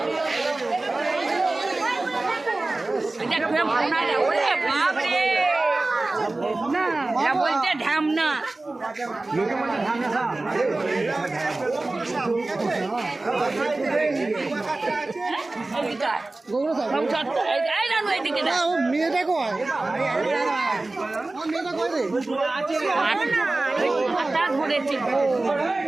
বলছে ঢামনা মেয়েটা কয় ধরেছে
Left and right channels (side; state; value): left; quieter; 3.1 dB